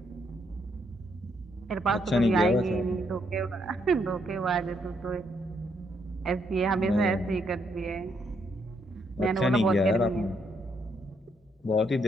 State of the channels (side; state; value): both; normal; correlation 0.75